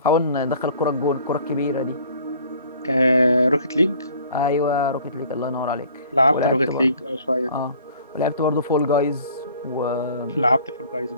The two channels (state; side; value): inverted; both; correlation -0.53